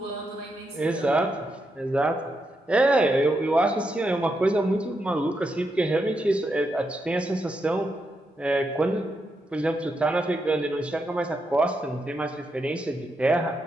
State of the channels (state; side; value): normal; both; correlation 0.83